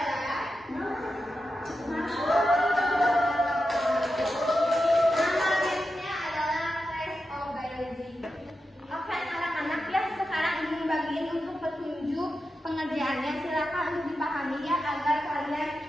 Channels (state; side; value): normal; both; correlation 0.90